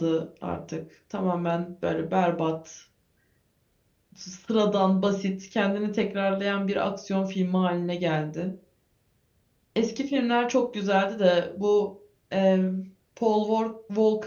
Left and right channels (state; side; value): identical; both; correlation 1.00